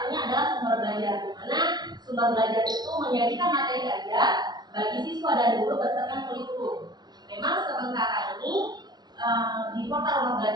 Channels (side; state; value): left; late; 0.20 ms